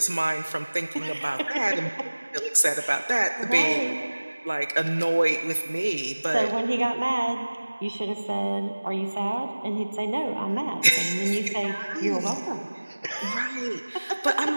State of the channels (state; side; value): inverted; both; correlation -1.00